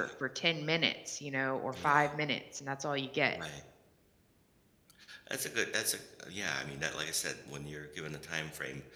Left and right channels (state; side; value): identical; both; correlation 1.00